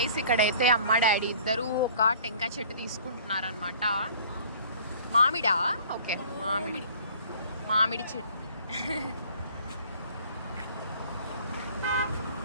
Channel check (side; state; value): both; inverted; correlation -0.51